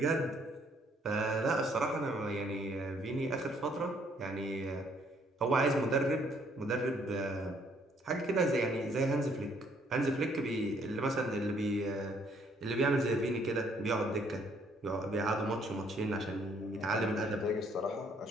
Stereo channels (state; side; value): normal; both; correlation 0.66